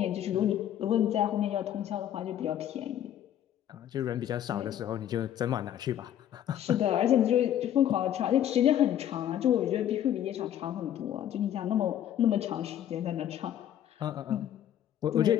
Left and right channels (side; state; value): right; quieter; 11.0 dB